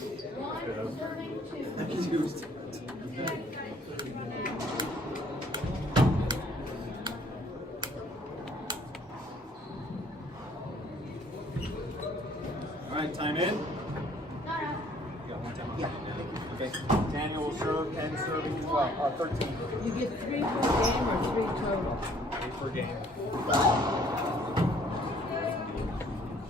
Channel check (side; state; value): both; normal; correlation 0.59